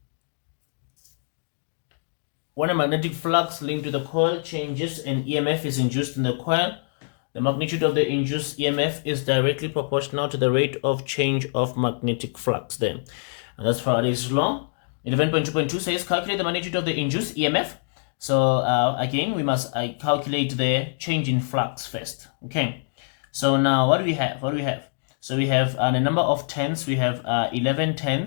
when a magnetic flux linked to the coil changes and EMF is induced in the coil, the magnitude of the induced EMF is directly proportional to the rate of change of magnetic flux there. And that's Faraday's law. 11.2.2 says calculate the magnitude of the induced EMF. So again, we must calculate the change in flux first. Okay. So now what do we have? What do we have? So we have the number of tens. We have 11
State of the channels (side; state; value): right; silent; digital silence